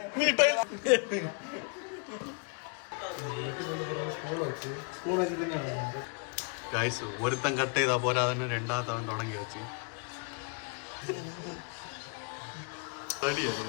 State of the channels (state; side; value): quieter; right; 37.8 dB